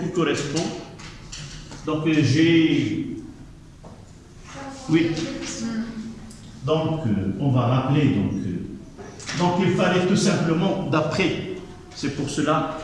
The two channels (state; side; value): identical; both; correlation 1.00